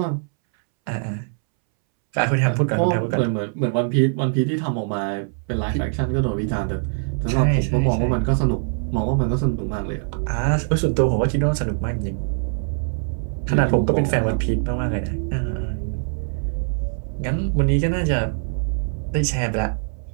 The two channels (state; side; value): silent; left; 64 dB below the other